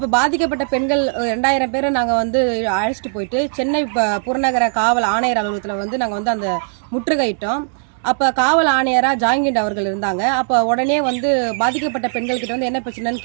பாதிக்கப்பட்ட பெண்கள் 2000 பேரை நாங்க அழைச்சிட்டு போயிட்டு சென்னை புறநகர காவல் ஆணையர் அலுவலகத்தில் நாங்க அந்த முற்றுகையிட்டோம். அப்ப காவல் ஆணையரா ஜாங்கிண்ட் அவர்கள் இருந்தாங்க. அப்ப உடனே பாதிக்கப்பட்ட பெண்கள் கிட்ட என்ன பிரச்சனைன்னு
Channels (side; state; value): left; silent; digital silence